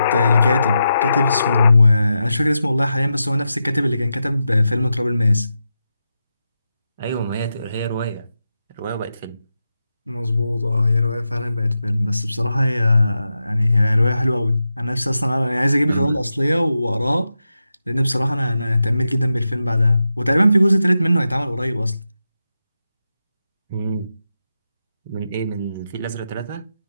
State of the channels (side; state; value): both; inverted; correlation -0.88